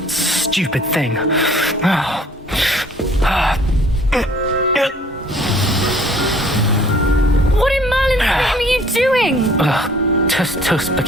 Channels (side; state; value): both; normal; correlation 0.55